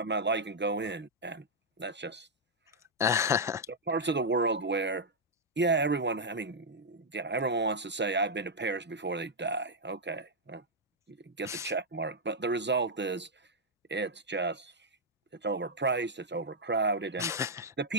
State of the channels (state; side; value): normal; both; correlation -0.04